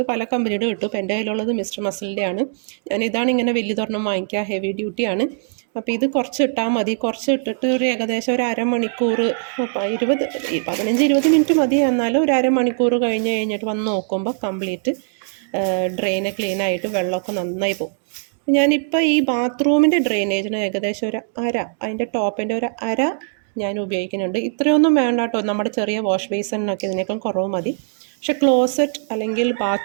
പല കമ്പനിയുടെ കിട്ടും. ഇപ്പോൾ എൻ്റെ കയ്യിലുള്ളത് മിസ്റ്റർ മസിലിൻ്റെ ആണ്. ഇതാണ് ഇങ്ങനെ വലിയ തൊരെണ്ണം വാങ്ങിക്കുക, ഹെവി ഡ്യൂട്ടിയാണ്. അപ്പോൾ ഇത് കുറച്ച് ഇട്ടാൽ മതി. കുറച്ച് ഇട്ടിട്ട് ഒരു ഏകദേശം ഒരു അരമണിക്കൂർ, 15-20 മിനിറ്റ് മതി. എന്നാലും ഒരു അരമണിക്കൂർ കഴിഞ്ഞിട്ട് വന്ന് നോക്കുമ്പോൾ കംപ്ലീറ്റ് ഡ്രെയിന് ക്ലീനായിട്ട് വെള്ളമൊക്കെ നന്നായി പോകും. ഞാനിപ്പോൾ ഈ ബാത്റൂമിൻ്റെ ഡ്രെയിനേജിന് ഏകദേശം ഒരു അതിൻ്റെ ടോപ്പിൻ്റെ ഒരു ഞാൻ ഉപയോഗിക്കുന്നുണ്ട്. ഇത്രയൊന്നും വേണ്ട കേട്ടോ, നമ്മുടെ ചെറിയ വാഷ് ബേസിനൊക്കെ ഇതിനേക്കാൾ കുറവ് മതി. പക്ഷെ ക്ലോസറ്റ് അല്ലെങ്കിൽ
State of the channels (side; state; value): left; silent; digital silence